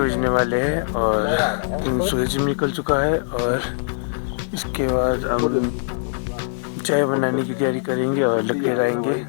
वाले हैं और सूरज निकल चुका है और इसके बाद हम चाय बनाने की तैयारी करेंगे और लकड़ी लाएंगे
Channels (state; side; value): silent; right; digital silence